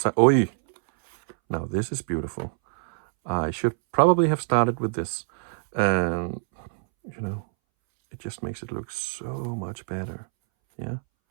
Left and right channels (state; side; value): silent; left; 61 dB below the other